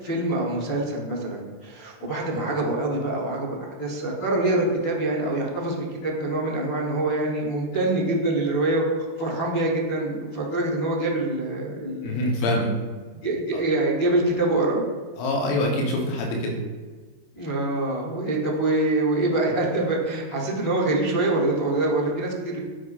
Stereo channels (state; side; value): late; right; 26 ms